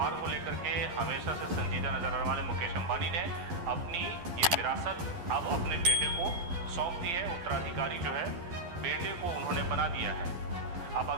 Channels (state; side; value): late; left; 12 ms